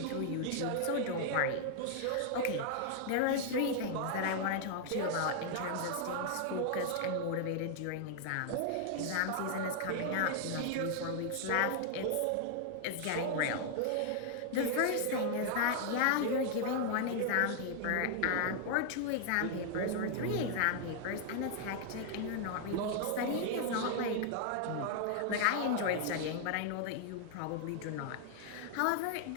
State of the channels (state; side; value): different; both; correlation 0.00